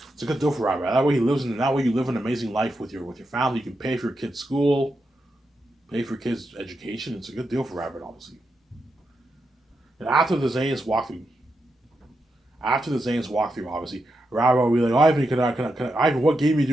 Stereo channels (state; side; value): normal; both; correlation 0.86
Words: It's a good deal for Robert. That way he lives in. That way you live an amazing life with your family. You can pay for your kids' school, pay for your kids' education. It's a good deal for Robert, obviously. And after the Zane's walkthrough, obviously, Robert will be like, Ivan, Ivan, what game are you